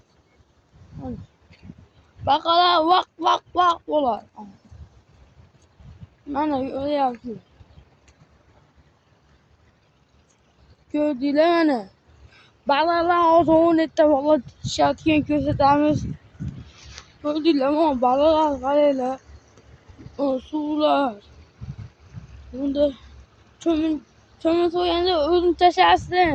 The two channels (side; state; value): both; identical; correlation 1.00